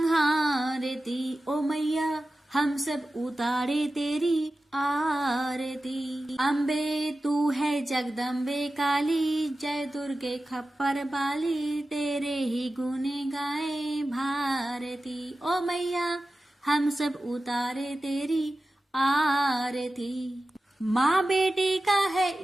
ओ मैया हम सब उतारे तेरी आरती। अम्बे तू है जगदम्बे काली, जय दुर्गे खप्पर बाली, तेरे ही गुण गाए भारती। ओ मैया हम सब उतारे तेरी आरती। माँ बेटी का है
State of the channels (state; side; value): normal; both; correlation 0.94